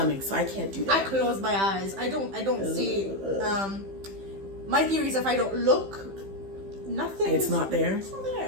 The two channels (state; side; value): late; left; 15 ms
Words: so I can't do that. I close my eyes. I don't see. My theory is if I don't look, nothing. It's not there. It's not